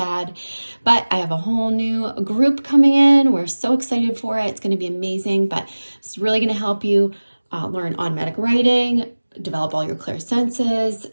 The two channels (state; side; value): inverted; both; correlation -1.00